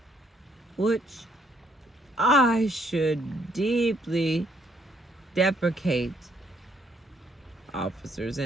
which I should deeply deprecate. Officers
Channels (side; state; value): both; normal; correlation 0.69